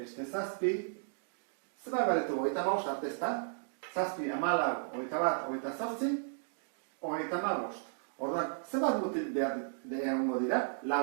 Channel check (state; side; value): silent; left; digital silence